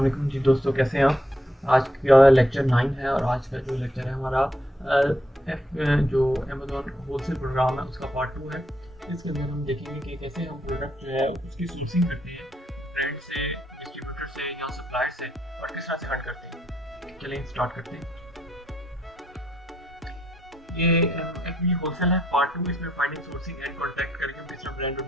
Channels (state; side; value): normal; both; correlation 0.76